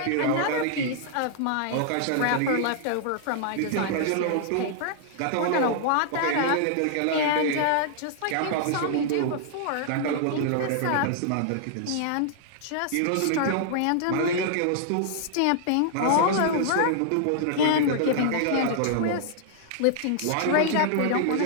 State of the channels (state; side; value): different; both; correlation -0.01